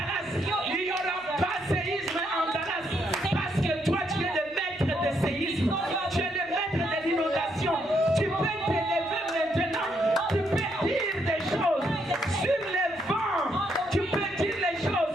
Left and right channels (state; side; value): noise; left; hum, 29 dB below the sound